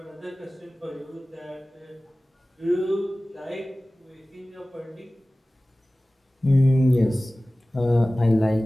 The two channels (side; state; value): both; normal; correlation 0.97